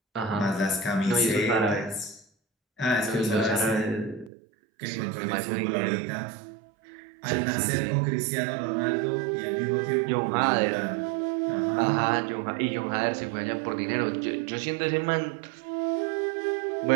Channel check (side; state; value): left; drops out; at 4.3 s